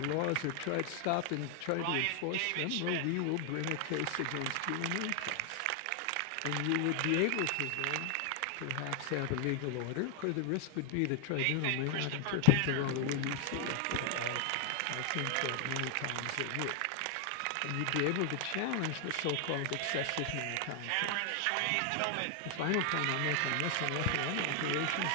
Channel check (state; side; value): different; both; correlation 0.00